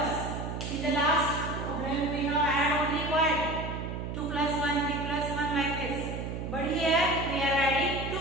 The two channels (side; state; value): right; noise; hum, 5 dB below the sound